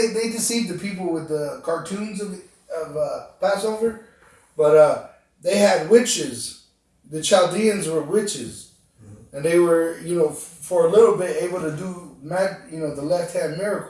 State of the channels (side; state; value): both; identical; correlation 1.00